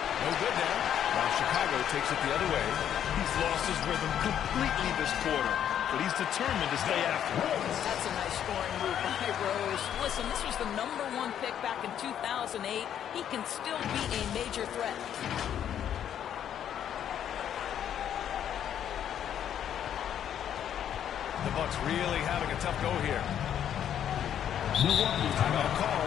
No good there. Now Chicago takes it the other way. He's lost his rhythm completely this quarter, but he's determined to stay after it. That's a nice scoring move by Rose. Listen, this was the #1 pick back in 2008. He can still be a major threat. The Bucks really having a tough go here. Milwaukee Timeout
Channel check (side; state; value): right; quieter; 9.7 dB